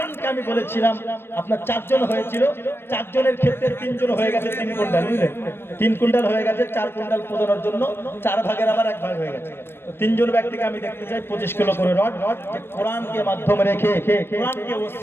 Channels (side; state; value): right; late; 0.11 ms